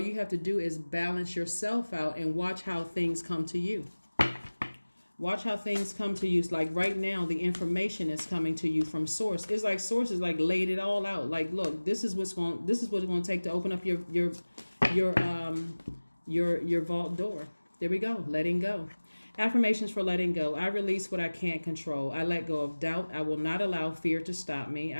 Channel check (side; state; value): both; inverted; correlation -1.00